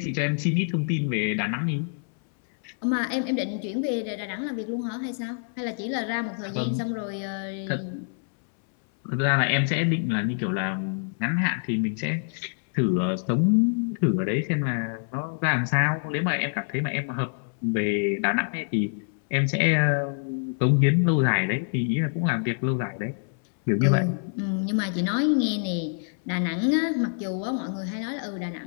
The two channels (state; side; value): silent; right; 61 dB below the other